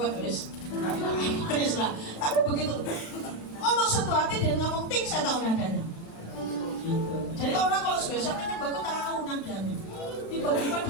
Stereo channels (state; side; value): late; right; 35 ms